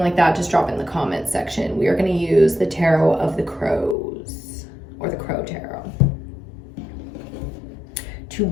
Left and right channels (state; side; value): drops out; right; at 4.0 s